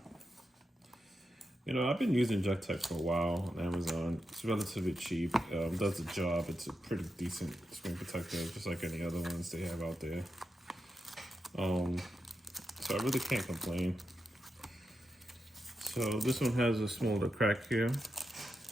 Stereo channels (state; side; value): normal; both; correlation 0.87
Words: You know, I've been using JETech for a while on Amazon. It's relatively cheap, does the job. It's a pretty decent screen protector, just like any other ones they have out there. So I really can't complain. So this one has a smaller crack here.